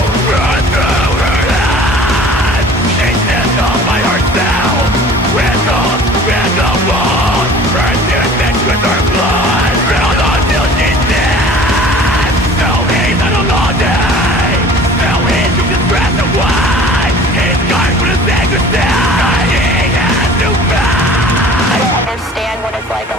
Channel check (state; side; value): normal; both; correlation 0.46